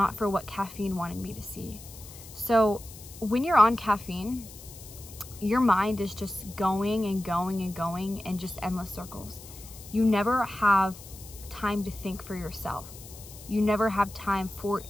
for what caffeine wanted me to see. So when you're on caffeine, your mind is just going and going and going in just endless circles. You never have time to think for yourself. You never have time for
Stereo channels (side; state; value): left; noise; hiss, 17 dB below the sound